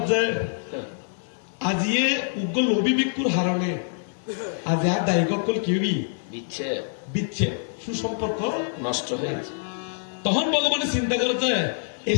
যে আজিয়ে উগ্র লোভী ভিক্ষুর হারণে আজ আর দায়িকল কিউবি বিচ্ছে বিচ্ছে সুসম্পর্ক নষ্ট হয়েছে তখন ভগবানের চিন্তা করে যে এই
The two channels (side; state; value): right; silent; digital silence